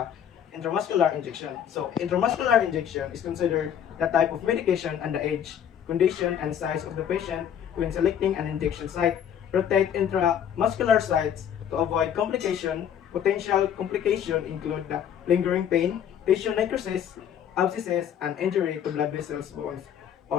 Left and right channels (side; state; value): right; quieter; 9.1 dB